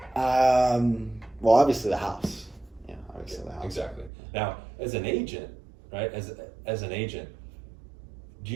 Well, obviously the house. Yeah, obviously the house. Exactly. Now, as an agent, right? As an agent, do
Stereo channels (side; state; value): left; drops out; at 4.1 s